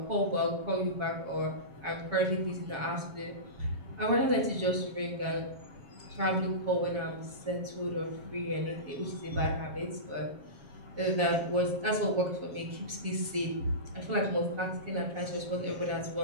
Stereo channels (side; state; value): left; late; 7.3 ms